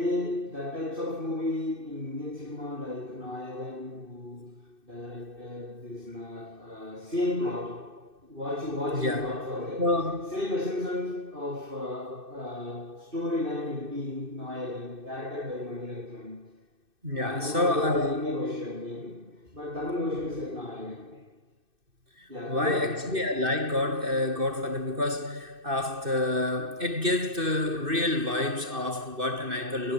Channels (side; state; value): left; late; 2.6 ms